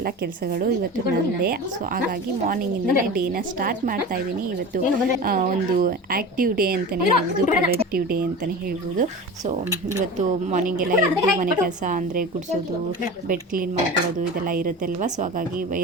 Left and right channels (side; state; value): both; normal; correlation 0.32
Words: ಕೆಲಸಗಳು ಇವತ್ತು ನನ್ನದೇ. ಸೊ ಹಾಗಾಗಿ ಮಾರ್ನಿಂಗಿಂದನೇ ಡೇನ ಸ್ಟಾರ್ಟ್ ಮಾಡ್ತಾ ಇದ್ದೀನಿ. ಇವತ್ತು ಒಂದು ಆ್ಯಕ್ಟಿವ್ ಡೇ ಅಂತಲೇ ಹೇಳ್ಬೋದು, ಪ್ರೊಡಕ್ಟಿವ್ ಡೇ ಅಂತಲೇ ಹೇಳ್ಬೋದು. ಸೊ ಇವತ್ತು ಮಾರ್ನಿಂಗ್ ಎಲ್ಲ ಎದ್ದು ಮನೆ ಕೆಲಸ ಅಂದರೆ ಗುಡಿಸೋದು, ಬೆಡ್ ಕ್ಲೀನ್ ಮಾಡ್ಕೊಳ್ಳೋದು ಇದೆಲ್ಲ ಇರುತ್ತೆ ಅಲ್ವಾ. ಸೊ ಹಾಗಾಗಿ